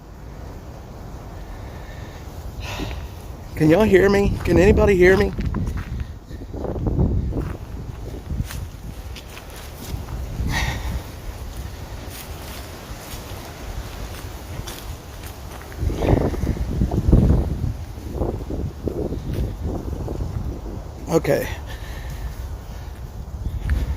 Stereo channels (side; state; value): both; identical; correlation 1.00